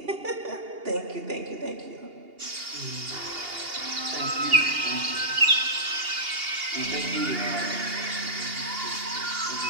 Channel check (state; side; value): late; left; 2.8 ms